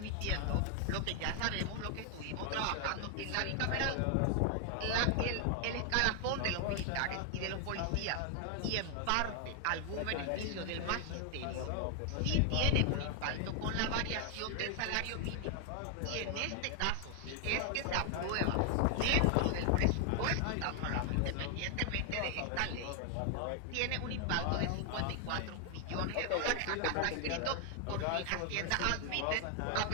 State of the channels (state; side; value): different; both; correlation 0.00